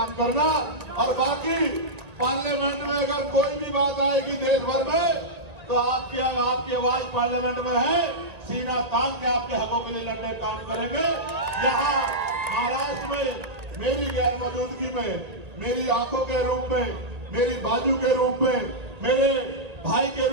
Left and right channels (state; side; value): late; left; 1.8 ms